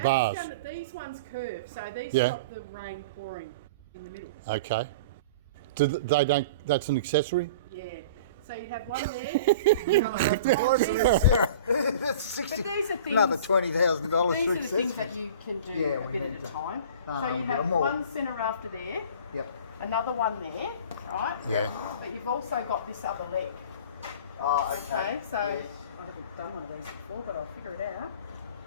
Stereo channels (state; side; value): inverted; both; correlation -0.41